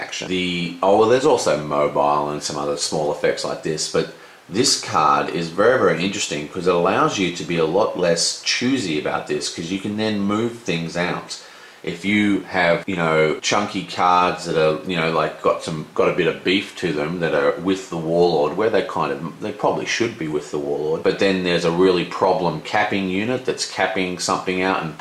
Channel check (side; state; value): both; identical; correlation 1.00